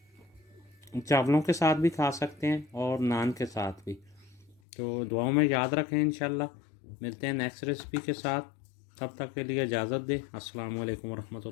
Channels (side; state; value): right; drops out; at 4.6 s